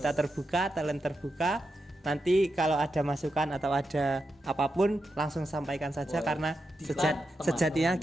kita terbuka, talent terbuka. Nanti kalau ada masukan atau ada apapun langsung sampaikan saja, karena sejatinya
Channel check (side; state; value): both; normal; correlation 0.87